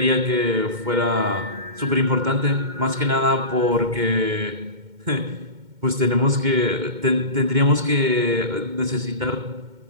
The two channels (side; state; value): left; late; 2.2 ms